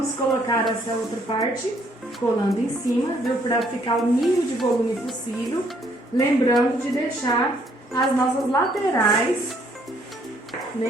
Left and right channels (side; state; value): both; normal; correlation 0.67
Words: colocar essa outra parte colando em cima, viu, para ficar o mínimo de volume possível, lembrando de deixar as nossas laterais,